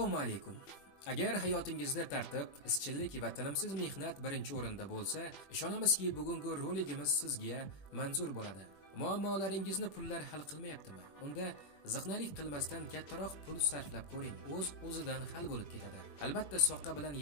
alaykum. Agar hayotingizda tartib, izchillik va tinimsiz mehnat birinchi o'rinda bo'lsa, ishonamizki, bugungi roligimiz sizga manzur bo'ladi. Muammolaringizni pullar hal qilmayaptimi? Unda ziqnalik qilmasdan kattaroq pul sarflab ko'ring. O'zidan hal bo'lib ketadi. Albatta, soqqa bilan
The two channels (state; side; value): late; right; 20 ms